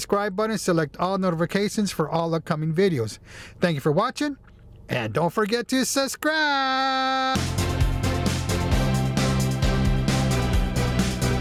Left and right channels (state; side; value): identical; both; correlation 1.00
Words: button, select all notifications for all upcoming videos. Thank you for watching, and don't forget to subscribe!